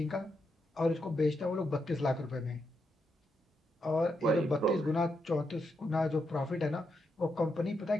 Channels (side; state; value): both; normal; correlation 0.82